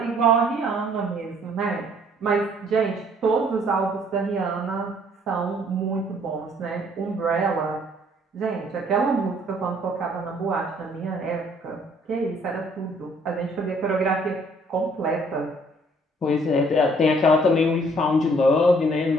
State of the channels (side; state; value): both; normal; correlation 0.61